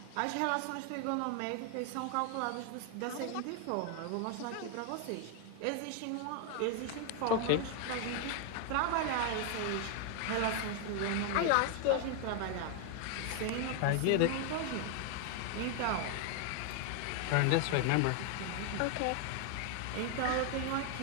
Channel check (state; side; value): different; both; correlation 0.01